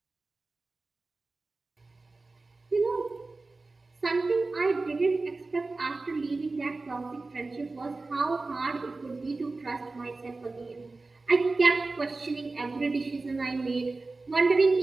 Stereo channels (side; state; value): left; quieter; 3.5 dB